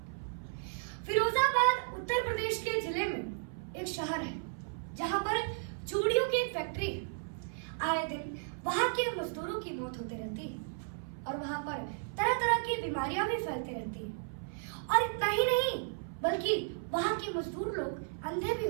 फिरोजाबाद उत्तर प्रदेश के जिले में एक शहर है जहां पर चूड़ियों की एक फैक्ट्री है। आए दिन वहां के मजदूरों की मौत होती रहती है और वहां पर तरह तरह की बीमारियां भी फैलती रहती है। और इतना ही नहीं बल्कि वहां के मजदूर लोग अंधे भी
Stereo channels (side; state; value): left; silent; 55 dB below the other